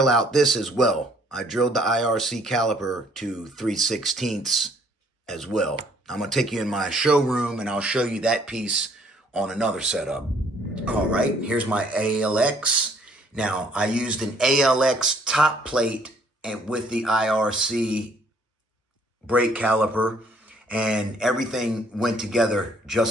out this as well. I drilled the IRC caliper to 3/16 as well. I'm going to take you in my showroom and I'll show you that piece on another setup. All right, here's my ALX. Now, I used an ALX top plate and with the IRC brake caliper, and everything went together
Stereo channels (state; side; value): normal; both; correlation 0.62